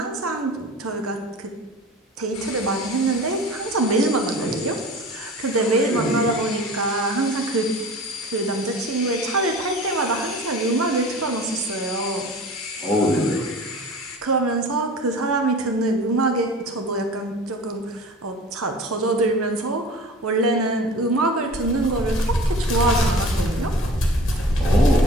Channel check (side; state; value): both; normal; correlation 0.39